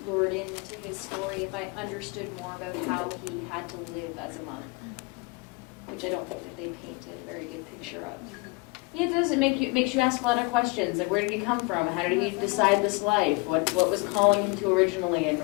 lured into his story if I understood more about how he had to live as a monk, which I don't think that they painted a very good picture of. Yeah, it does. It makes you ask a lot of questions. Like, where did he come from? How did he decide this life? What was calling him to originally, and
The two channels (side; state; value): right; quieter; 26.8 dB